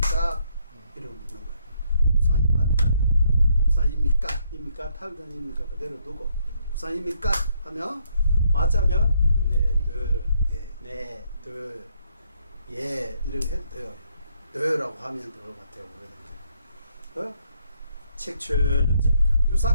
이러고 묻는 거예요. 무산입니까? 탈. 무산입니까? 입니까? 탈전입니까? 그대로 두고 무산입니까? 하면 맞자면 네, 둘, 예 이렇게 해도 돼요. 너라고 하면 될 것 같아요. 책 초여제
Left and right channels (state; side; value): inverted; both; correlation -0.72